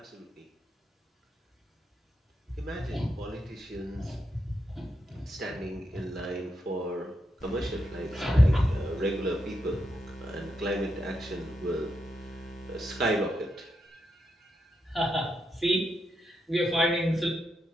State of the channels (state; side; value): normal; both; correlation 0.83